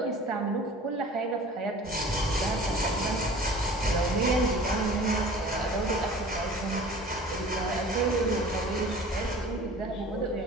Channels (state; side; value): normal; both; correlation 0.44